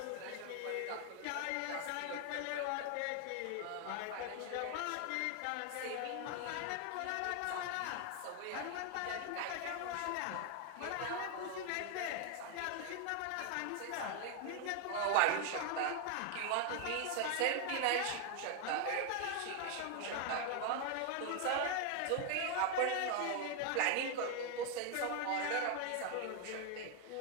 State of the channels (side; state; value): both; different; correlation 0.00